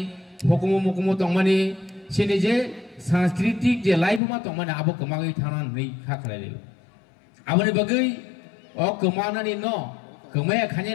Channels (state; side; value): drops out; right; at 4.2 s